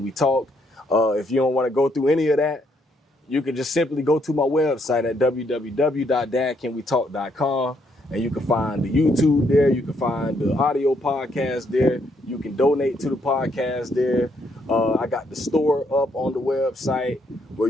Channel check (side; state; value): both; normal; correlation 0.73